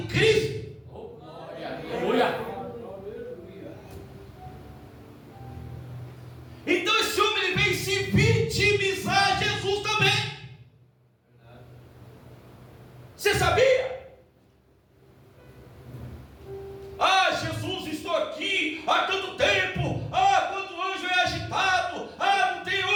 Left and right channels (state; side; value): identical; both; correlation 1.00